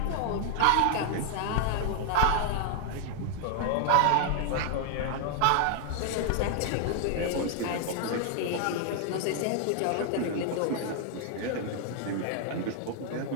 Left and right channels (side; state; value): both; different; correlation 0.00